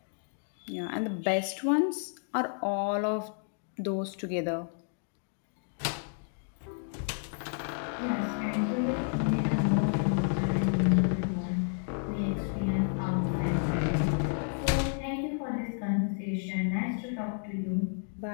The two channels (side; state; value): right; silent; 57 dB below the other